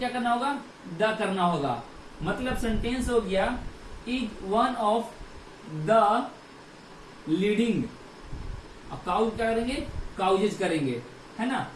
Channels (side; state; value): both; identical; correlation 1.00